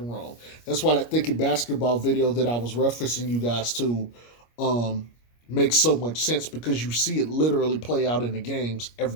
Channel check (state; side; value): late; right; 25 ms